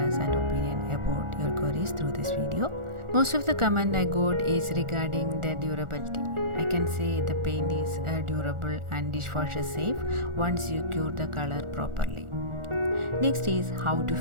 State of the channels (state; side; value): late; left; 1.4 ms